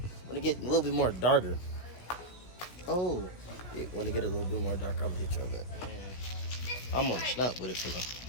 get a little bit more darker. Oh, yeah, when it get a little bit more darker, I'm gonna hit y'all back. Man, I'm on the snap with it for now.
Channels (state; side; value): late; right; 16 ms